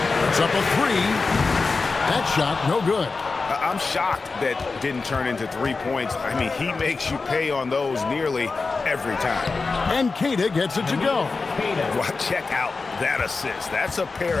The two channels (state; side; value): quieter; right; 4.1 dB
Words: It's up a 3. That shot, no good. I'm shocked that didn't turn into 3 points. I mean, he makes you pay on those nearly every time. And Keita gets it to go. Well, check out that assist. That's a pair